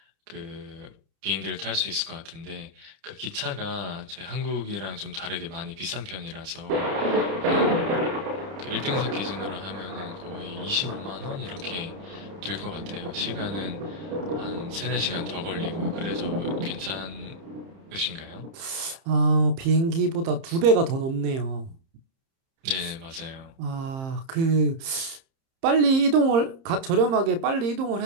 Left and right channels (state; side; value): late; left; 30 ms